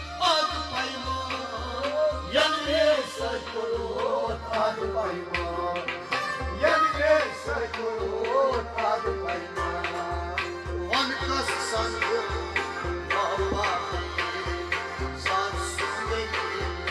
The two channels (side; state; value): both; identical; correlation 1.00